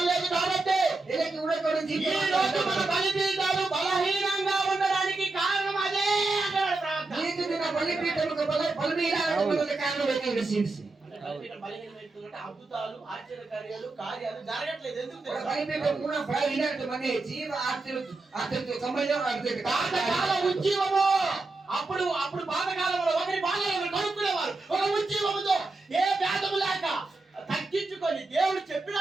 లేదు కాబట్టి ఇలకి ఉండక ఈ రోజు మన బలిపీఠాలు బలహీనంగా ఉండడానికి కారణం అదే అంటాడు ప్రార్థన. నీకు దిన బలిపీఠముకు బలిపీఠములకు కారణం ఏంటి రసీసి అంటే బలిపీఠం బలహీనమైపోతుందంటే అద్భుతాలు ఆశ్చర్యకార్యాలు కార్యాలు జరగట్లేదు. ఎందుకు తెలుసా? బలిపీఠం కూడా బలహీనత మనే జీవ ఆశ్చర్య సంబంధం అర్థం పాతకాల ఉజ్జీవము. అప్పుడు పాతకాలంలో ఒకరి బాధలు ఒకరు కనుక్కునేవారు. ఒక ఉజ్జీవముతో ఏ భేదము లేక తగ్గించుకొని దేవుడు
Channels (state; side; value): quieter; left; 3.3 dB